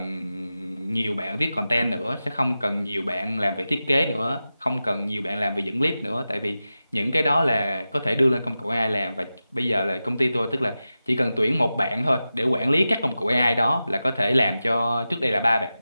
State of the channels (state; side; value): inverted; both; correlation -0.93